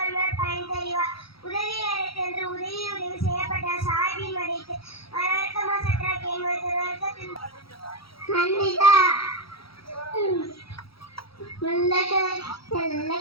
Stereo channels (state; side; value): late; right; 0.75 ms